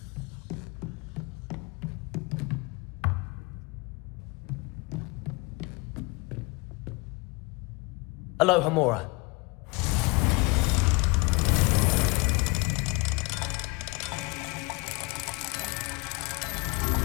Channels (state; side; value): quieter; right; 27.5 dB